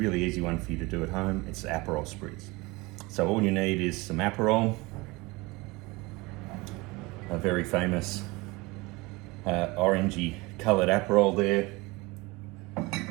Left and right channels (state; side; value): quieter; left; 23.6 dB